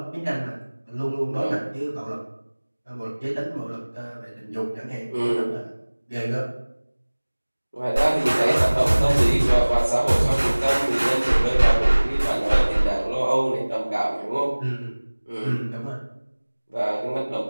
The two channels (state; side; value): inverted; both; correlation -1.00